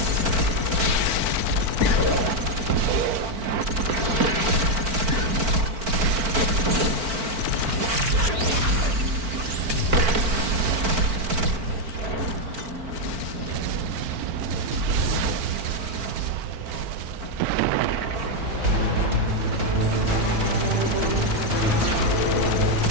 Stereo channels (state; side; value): late; left; 4.5 ms